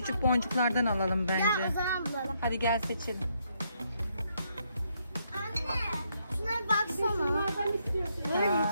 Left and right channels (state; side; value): inverted; both; correlation -0.75